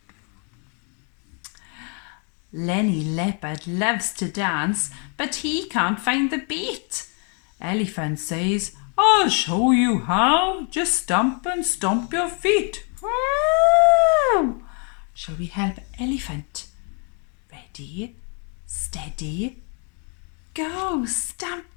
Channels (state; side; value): quieter; right; 39.1 dB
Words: Lenny Leopard loves to dance, but he can't find the beat. Elephant says, I'll show you how. Just stomp and stomp your feet. Woo! Shall we help Elephant? Ready, steady, go. Stamp,